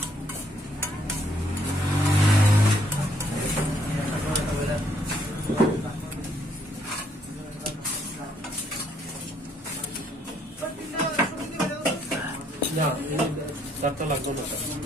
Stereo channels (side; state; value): both; normal; correlation 0.69